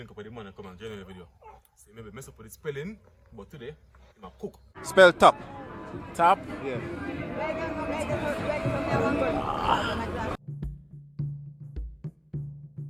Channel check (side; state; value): both; identical; correlation 1.00